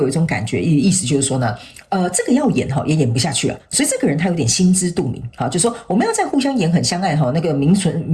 一种感觉，意思就是说呢，这个要演也演不下去了，所以这个人他有点心知肚明就是说我们要再互相演很相爱那个名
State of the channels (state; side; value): identical; both; correlation 1.00